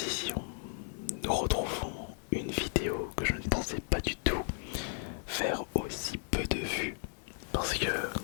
nous retrouvons une vidéo que je ne pensais pas du tout faire aussi peu de vues. Parce que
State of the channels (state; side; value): silent; right; 55 dB below the other